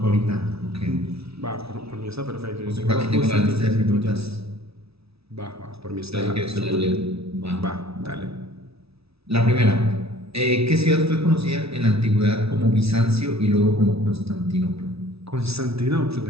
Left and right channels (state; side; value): late; left; 0.77 ms